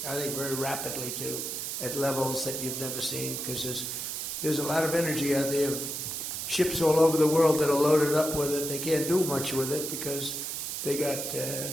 very rapidly too, at levels that you've never seen, because there's a lot of energy out there. Ships all over the world that are loaded up with it. They can't do much with it because they got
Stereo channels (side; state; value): right; noise; hiss, 4 dB below the sound